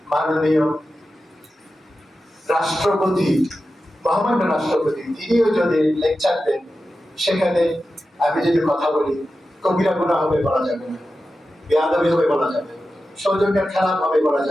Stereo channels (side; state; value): both; normal; correlation 0.92